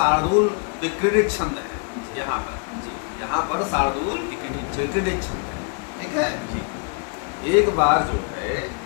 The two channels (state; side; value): quieter; right; 37.5 dB